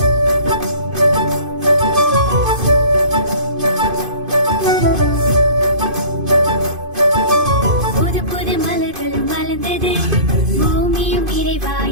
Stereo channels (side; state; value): left; late; 2.5 ms